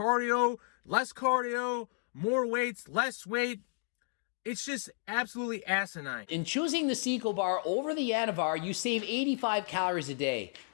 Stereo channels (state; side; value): silent; right; 56 dB below the other